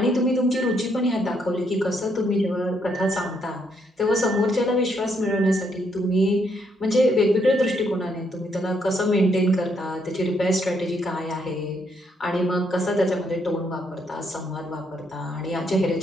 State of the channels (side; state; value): both; normal; correlation 0.74